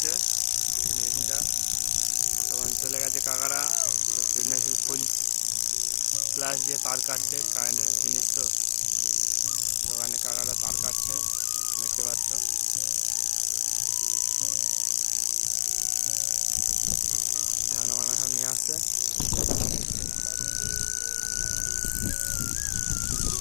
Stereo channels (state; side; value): quieter; right; 38.4 dB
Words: মেশিনটা তখন চলে গেছে কাকারা। তো ফিড মেশিন ফুল ফ্ল্যাশ দিয়ে তার কাটছে, কারেন্টের জিনিস তো, ওখানে কাকারা তার কাটছে, দেখতে পাচ্ছ। ধান বানা সব নিয়ে আসছে।